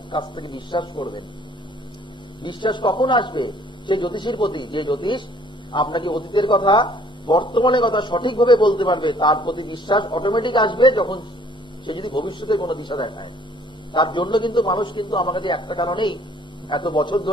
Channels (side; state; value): both; normal; correlation 0.58